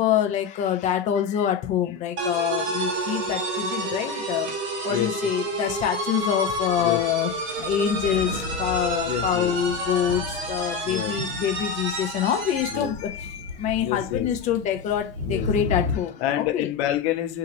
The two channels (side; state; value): right; quieter; 6.0 dB